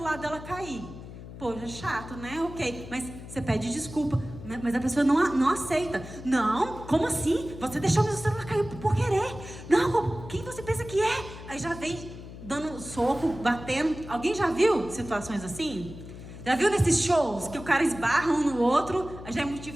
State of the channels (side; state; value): left; noise; hum, 13 dB below the sound